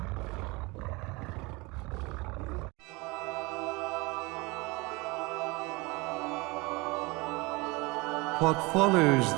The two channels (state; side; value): quieter; left; 25.0 dB